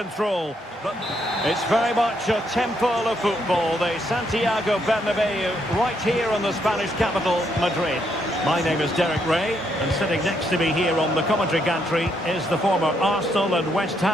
But it's very much a temple of football. The Santiago Bernabeu, right here in the Spanish capital, Madrid. My name is Derek Ray, and sitting next to me here on the commentary gantry is the former Arsenal and West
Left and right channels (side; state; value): both; normal; correlation 0.75